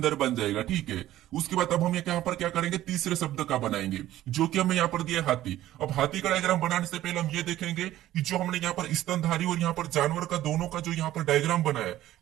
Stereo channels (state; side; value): quieter; left; 14.1 dB